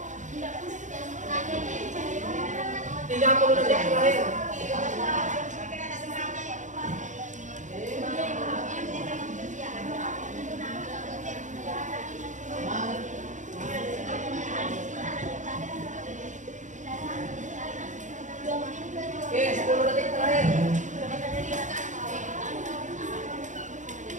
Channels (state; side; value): late; left; 0.36 ms